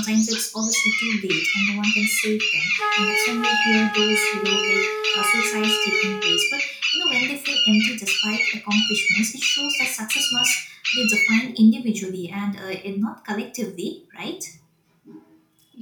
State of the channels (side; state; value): both; identical; correlation 1.00